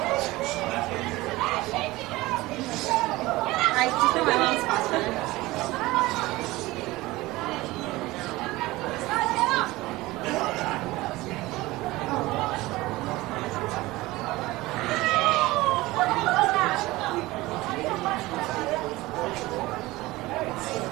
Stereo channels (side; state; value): left; quieter; 19.6 dB